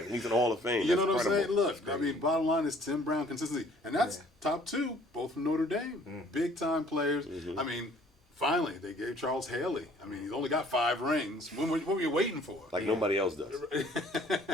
He's in the Hall of Fame. You know That's what I'm saying? incredible. Look, I mean, bottom line is Tim Brown consistency, and that's top 2, both from Notre Dame, big time players. I mean, finally they gave Charles Haley. I mean, he's only got 5 rings. What were you waiting for? Like nobody else does.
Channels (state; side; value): normal; both; correlation 0.57